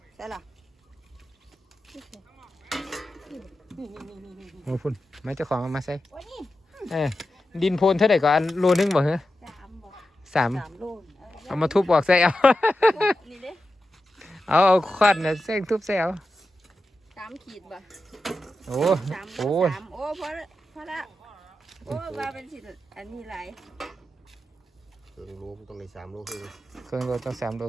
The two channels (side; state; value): both; normal; correlation 0.91